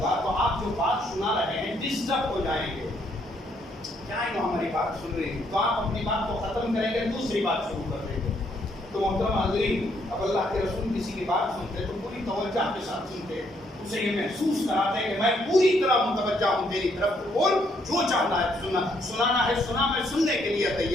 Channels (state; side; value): normal; both; correlation 0.71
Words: گا تو آپ جو بات سنا رہے ہیں ڈسٹرب ہو جائیں گے. کیا ہماری بات سن رہی ہیں تو آپ اپنی بات کو ختم کریں گے, دوسری بات شروع کر دیں گے. تو محترم حاضرین اب اللہ کے رسول کسی کی بات سنتے تو پوری توجہ کے ساتھ سنتے, اسے یہ محسوس کراتے ہیں کہ میں پوری طرح متوجہ ہوں تیری طرف, تو بول جو چاہنا ہے سنانا ہے سنا, میں سننے کے لیے